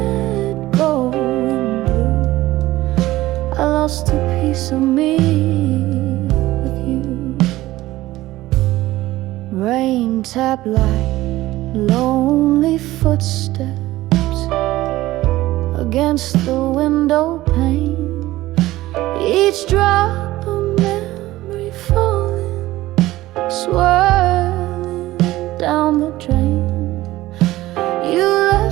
Go in blue, I lost a piece of me with you. Rain tap like lonely footsteps against the window pane, each drop a memory falling, swirling down the drain. You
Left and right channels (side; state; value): left; quieter; 16.8 dB